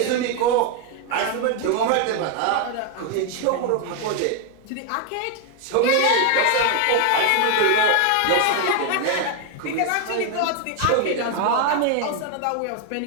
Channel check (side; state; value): both; different; correlation 0.01